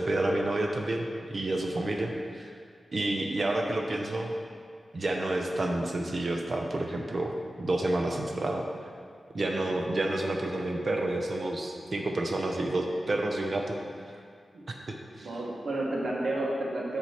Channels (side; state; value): both; normal; correlation 0.93